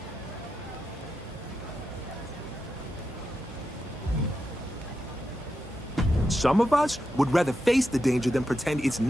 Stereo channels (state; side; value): normal; both; correlation 0.87